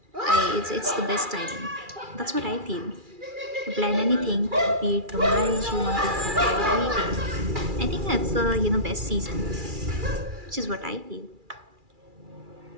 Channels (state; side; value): late; left; 2.4 ms